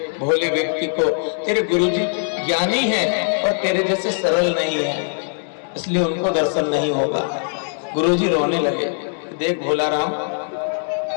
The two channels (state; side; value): silent; right; 65 dB below the other